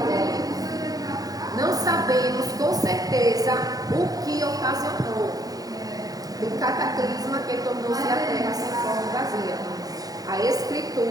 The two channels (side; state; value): left; late; 0.18 ms